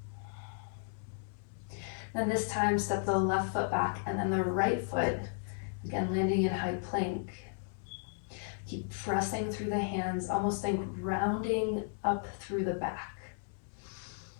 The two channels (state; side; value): silent; right; digital silence